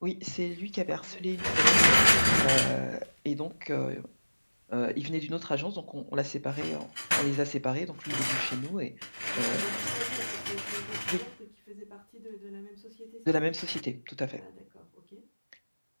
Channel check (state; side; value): inverted; both; correlation -1.00